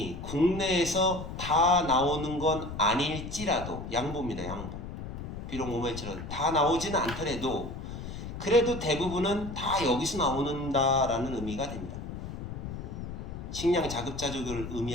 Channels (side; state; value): left; noise; rumble, 8 dB below the sound